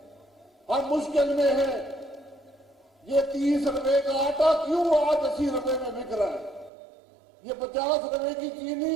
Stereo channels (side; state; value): left; drops out; at 6.7 s